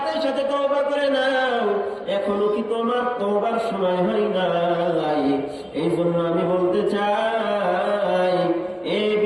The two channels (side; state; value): both; identical; correlation 1.00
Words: সাথে তওবা করে নাও, এখনো কি তোমার তওবার সময় হয় নাই? এই জন্য আমি বলতে চাই, এই